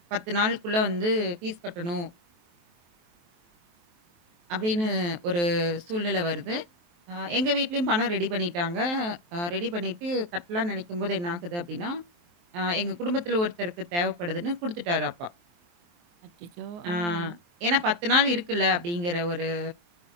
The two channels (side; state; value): left; late; 23 ms